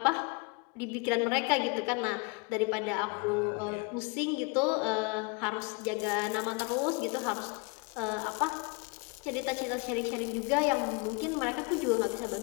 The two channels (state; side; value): quieter; right; 31.6 dB